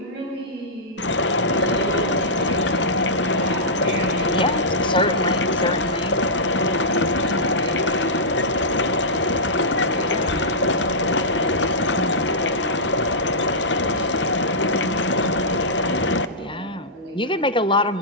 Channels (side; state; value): both; normal; correlation -0.14